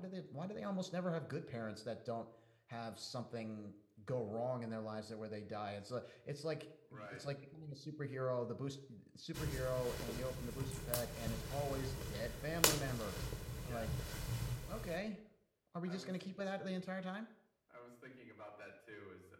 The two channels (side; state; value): both; identical; correlation 1.00